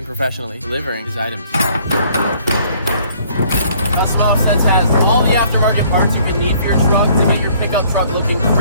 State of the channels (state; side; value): inverted; both; correlation -0.60